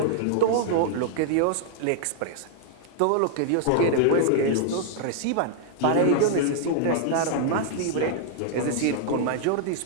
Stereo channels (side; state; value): both; different; correlation -0.01